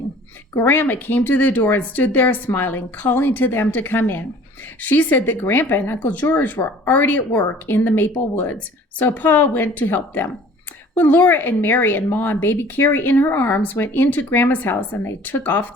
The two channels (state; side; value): normal; both; correlation 0.49